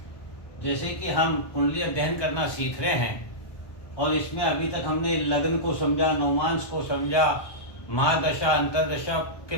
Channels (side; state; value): right; late; 1.2 ms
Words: जैसे कि हम कुंडली अध्ययन करना सीख रहे हैं और इसमें अभी तक हमने लग्न को समझा, नवमांश को समझा, महादशा अंतरदशा के